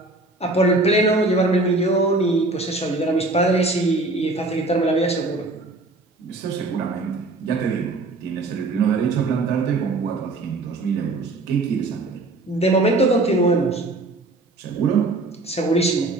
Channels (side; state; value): left; quieter; 3.1 dB